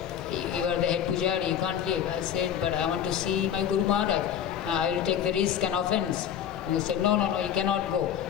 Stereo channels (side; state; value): right; quieter; 9.5 dB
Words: You are the head pujari, you can't leave. I said, but I want to see my Guru Maharaj. I will take the risk and offense. And he said, no, you cannot go.